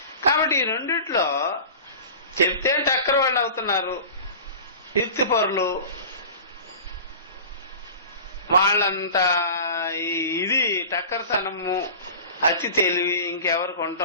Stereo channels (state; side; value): inverted; both; correlation -0.37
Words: కాబట్టి ఈ రెండిట్లో చెప్తే టక్కర్ వాళ్ళు అవుతున్నారు యుక్తిపరులు, వాళ్ళంతా ఇది టక్కర్తనము అతి తెలివి ఇంకెవరికి